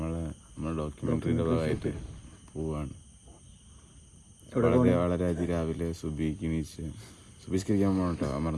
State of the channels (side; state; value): both; identical; correlation 1.00